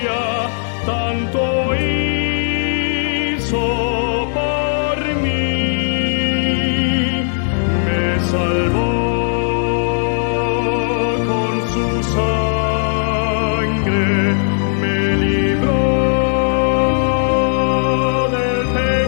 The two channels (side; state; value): right; silent; digital silence